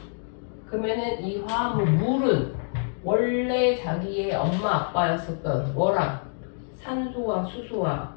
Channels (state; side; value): silent; right; digital silence